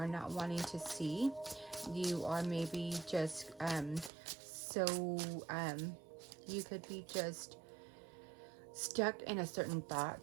not wanting to see. You are maybe just you could be just stuck in a certain thought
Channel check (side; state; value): left; drops out; at 4.1 s